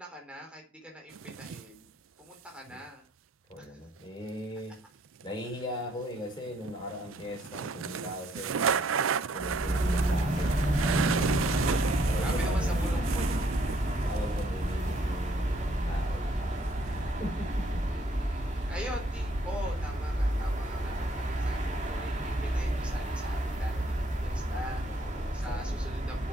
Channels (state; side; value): normal; both; correlation 0.67